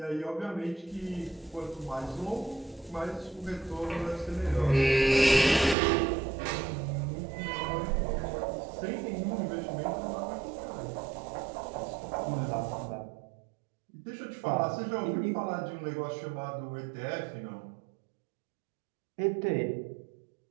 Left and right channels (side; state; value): left; drops out; at 5.8 s